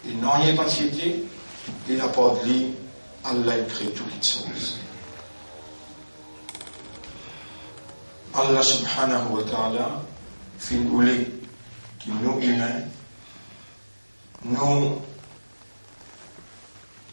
il n'en est pas tiété, et la part de lui, Allah il crée toutes les choses. Allah subhanahu wa ta'ala, fin voulait qu'il nous humains, nos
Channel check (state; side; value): inverted; both; correlation -1.00